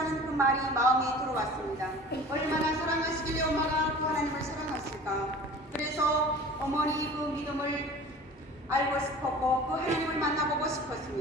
그 말이 마음에 들어왔습니다. 얼마나 사랑하시길래 엄마가 그 하나님을 사랑하실까. 그래서 어머니 그 믿음을 알고 싶었고 그 하나님을 만나보고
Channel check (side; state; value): both; normal; correlation 0.41